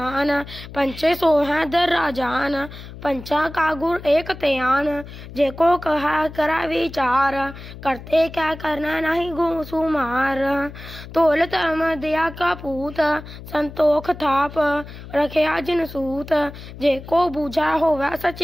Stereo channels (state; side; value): noise; left; hum, 14 dB below the sound